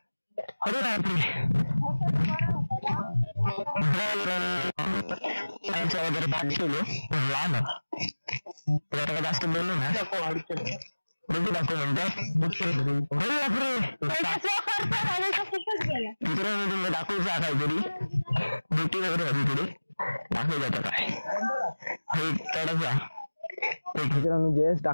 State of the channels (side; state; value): both; inverted; correlation -1.00